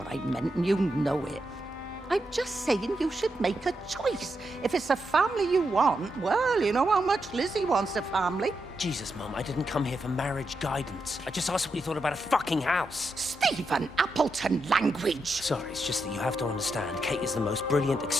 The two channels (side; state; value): both; normal; correlation 0.84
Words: I meant, and you know it. I'm just saying you should make a choice. If it's a family you want, well, you know how much Lizzie wants a family. Jesus, Mum, I didn't come here for marriage guidance. I just asked what you thought about a fucking house. Stephen Appleton language. Sorry, it's just that you have to understand, Kate is the most brilliant,